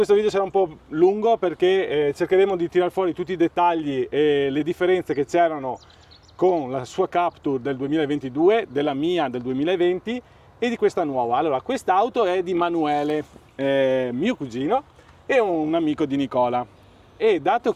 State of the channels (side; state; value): both; identical; correlation 1.00